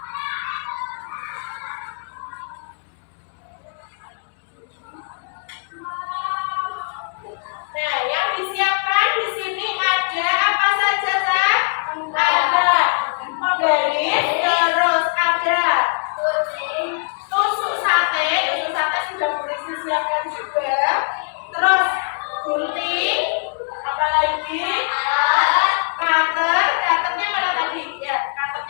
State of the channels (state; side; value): silent; right; digital silence